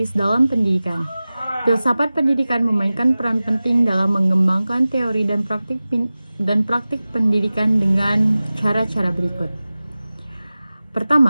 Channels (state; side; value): inverted; both; correlation -0.97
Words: dalam pendidikan. Filsafat pendidikan memainkan peran penting dalam mengembangkan teori dan praktik pendidikan dengan cara-cara berikut.